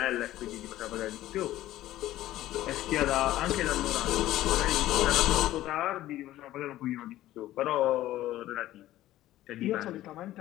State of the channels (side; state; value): right; quieter; 14.7 dB